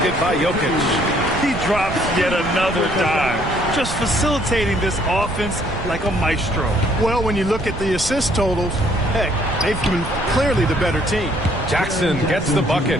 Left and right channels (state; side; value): noise; right; rumble, 9 dB below the sound